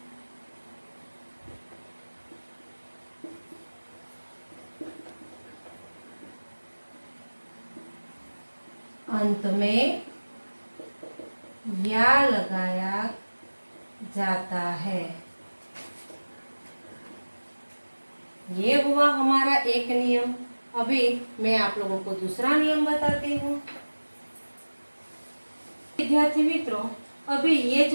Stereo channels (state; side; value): inverted; both; correlation -1.00